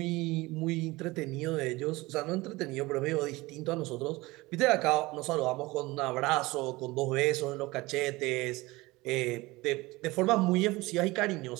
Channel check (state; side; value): quieter; left; 21.3 dB